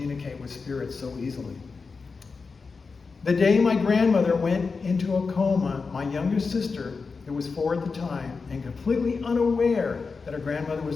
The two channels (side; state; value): right; quieter; 4.7 dB